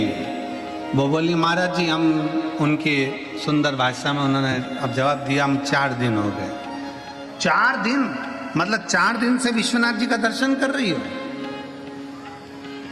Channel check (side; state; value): both; identical; correlation 1.00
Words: है? वो बोली महाराज जी हम, उनकी सुंदर भाषा में उन्होंने अब जवाब दिया, हम 4 दिन हो गए। 4 दिन मतलब 4 दिन से विश्वनाथ जी का दर्शन कर रही हो?